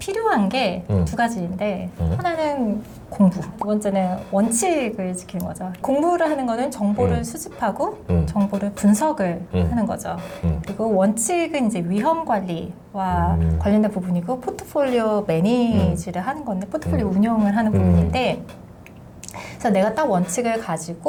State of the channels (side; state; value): both; identical; correlation 1.00